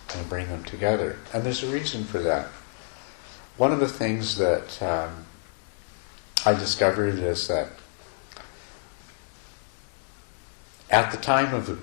and bring them together. And there's a reason for that. One of the things that I discovered is that at the time of the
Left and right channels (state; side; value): silent; right; digital silence